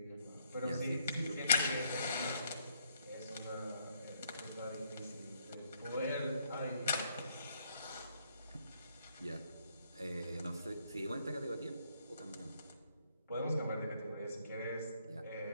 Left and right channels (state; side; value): inverted; both; correlation -0.70